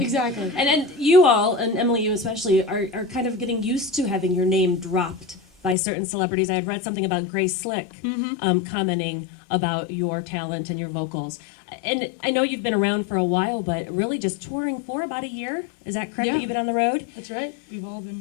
exactly. And you all, and Emily, you especially, are kind of getting used to having your name dropped by certain celebrities. I had read something about Grace Slick commenting about your talent and your vocals. And I know you've been around for a while, but really just touring for about a year. Is that correct, Yeah. that you've been on the road? That's right. We've all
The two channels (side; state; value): right; drops out; at 5.8 s